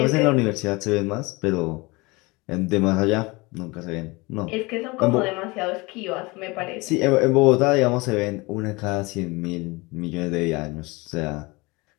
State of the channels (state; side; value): quieter; right; 24.5 dB